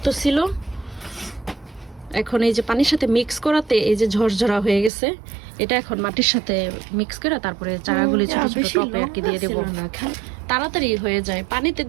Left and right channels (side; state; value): left; drops out; at 4.9 s